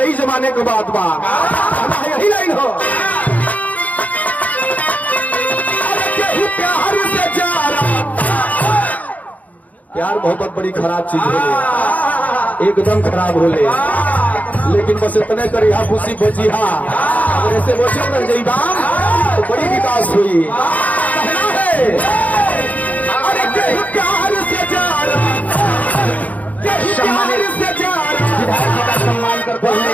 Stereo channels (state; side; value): late; right; 0.075 ms